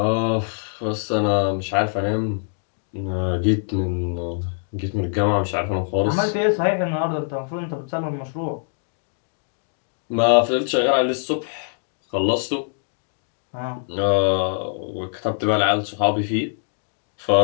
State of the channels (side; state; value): right; silent; digital silence